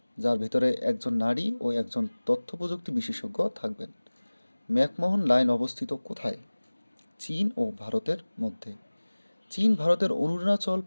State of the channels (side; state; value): both; inverted; correlation -1.00